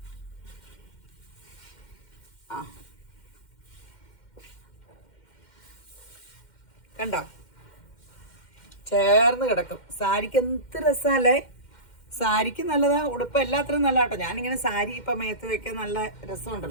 ആ കണ്ടോ, ചേർന്ന് കിടക്കും. സാരിക്ക് എന്ത് രസമല്ലേ? സാരിക്ക് നല്ലതാ, ഉടുപ്പ് എല്ലാത്തിനും നല്ല കേട്ടോ. ഞാനിങ്ങനെ സാരി ഇപ്പൊ മേത്ത് വെക്കാൻ നല്ല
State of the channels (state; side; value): late; right; 2.1 ms